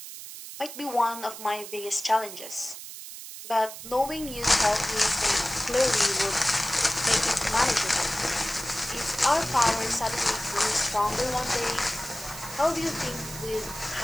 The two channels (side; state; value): right; noise; hiss, 12 dB below the sound